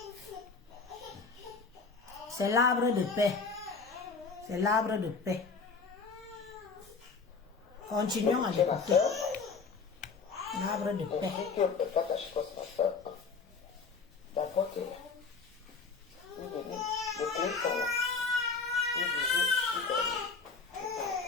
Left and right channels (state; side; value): quieter; right; 4.8 dB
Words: C'est l'arbre de paix. C'est l'arbre de paix. Continuons à l'écouter. L'arbre de paix.